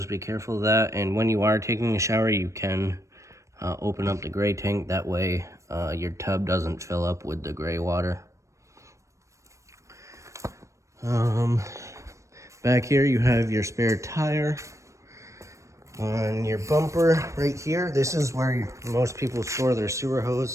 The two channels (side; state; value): left; late; 0.15 ms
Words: be careful of that, and when you are taking a shower, you can open up the gray tank. That way your tub doesn't fill up with the gray water. Back here you have your spare tire on your bumper right here. This is where most people store their sewer